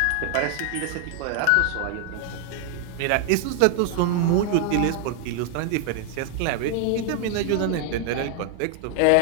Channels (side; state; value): both; different; correlation 0.00